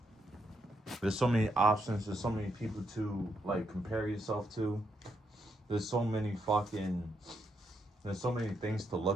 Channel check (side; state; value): both; normal; correlation 0.79